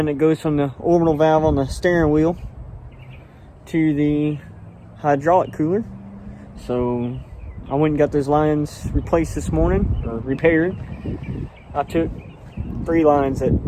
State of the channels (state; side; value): identical; both; correlation 1.00